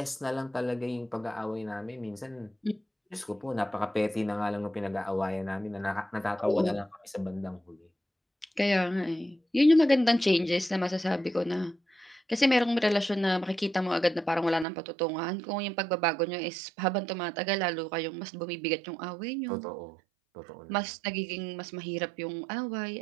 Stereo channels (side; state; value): left; drops out; at 14.7 s